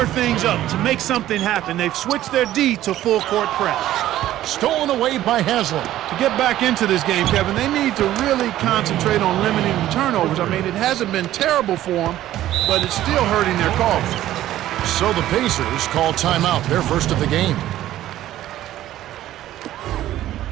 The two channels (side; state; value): left; quieter; 13.6 dB